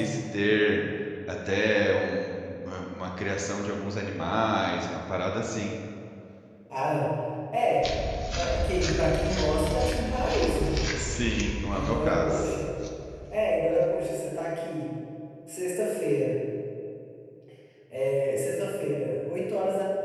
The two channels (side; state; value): both; identical; correlation 1.00